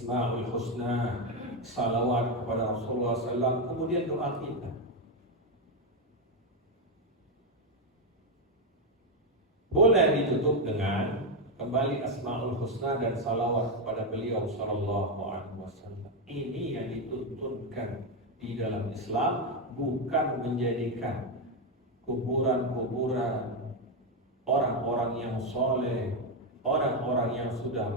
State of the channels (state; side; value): normal; both; correlation 0.06